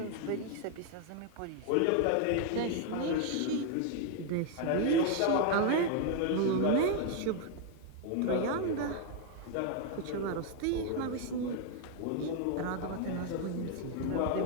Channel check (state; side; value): different; both; correlation 0.01